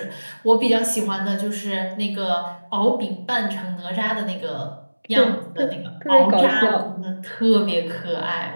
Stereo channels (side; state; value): both; inverted; correlation -1.00